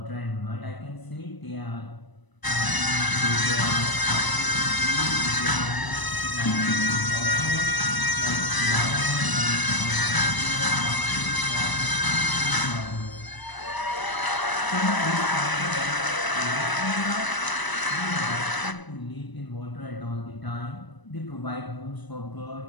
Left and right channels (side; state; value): right; late; 1.0 ms